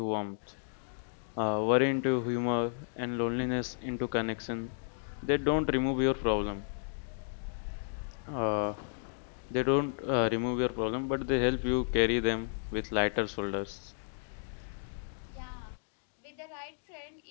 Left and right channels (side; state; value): right; silent; digital silence